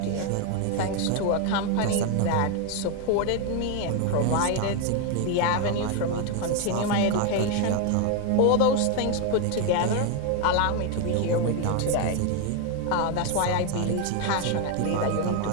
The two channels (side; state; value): both; different; correlation 0.01